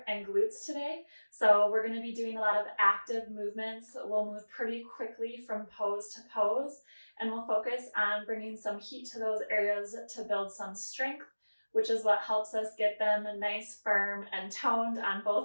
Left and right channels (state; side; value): inverted; both; correlation -1.00